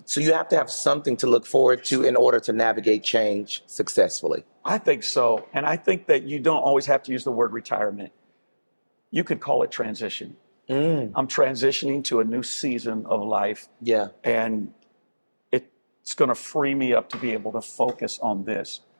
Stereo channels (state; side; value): inverted; both; correlation -1.00